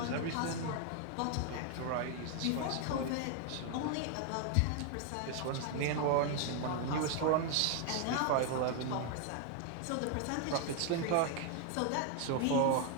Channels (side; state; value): both; different; correlation 0.00